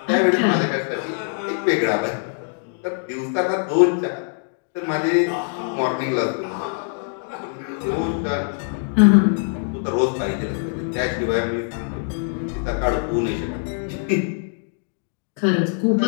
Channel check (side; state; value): right; silent; 60 dB below the other